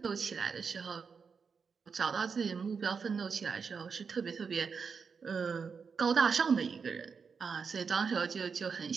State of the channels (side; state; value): left; quieter; 5.7 dB